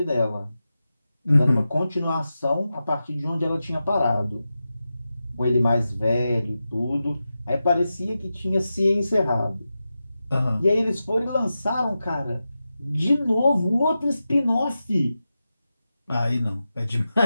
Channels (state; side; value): inverted; both; correlation -0.92